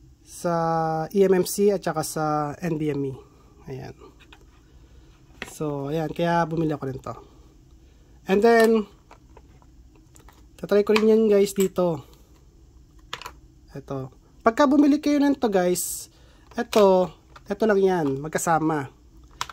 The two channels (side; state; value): both; identical; correlation 1.00